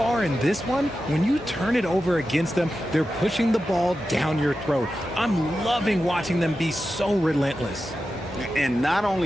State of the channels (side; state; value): both; normal; correlation 0.91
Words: in this one, when you turn it over against them, they're pushing the ball down your throat. I'm loving watching them be so relentless. And not